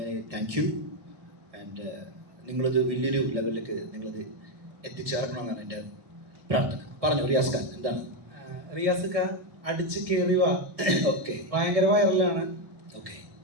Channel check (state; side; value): late; left; 1.7 ms